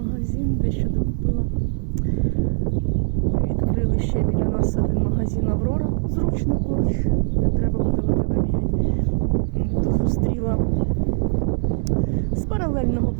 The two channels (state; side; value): silent; left; 64 dB below the other